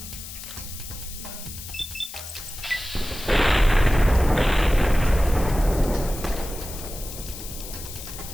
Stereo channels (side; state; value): left; noise; hiss, 12 dB below the sound